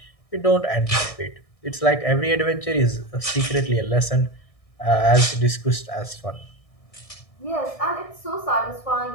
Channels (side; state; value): right; late; 1.6 ms